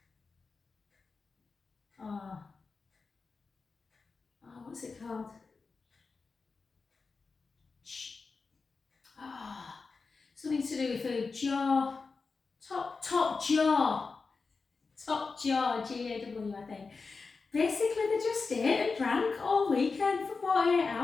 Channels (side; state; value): right; quieter; 4.5 dB